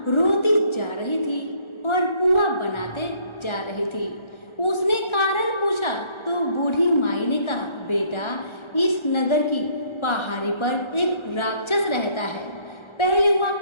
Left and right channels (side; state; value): right; late; 1.3 ms